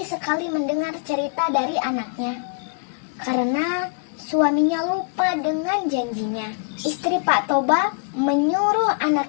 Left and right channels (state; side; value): quieter; right; 37.2 dB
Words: sekali mendengar cerita dari anaknya, karena suaminya lupa dengan janjinya. Istri Pak Toba menyuruh